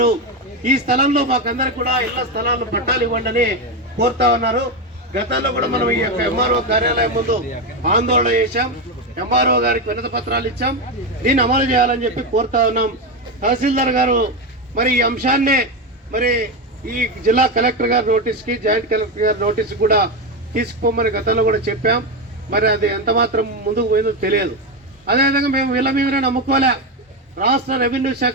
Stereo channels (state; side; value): normal; both; correlation 0.12